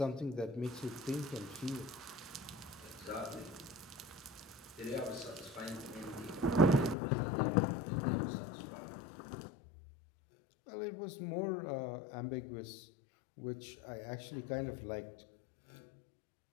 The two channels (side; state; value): right; drops out; at 7.0 s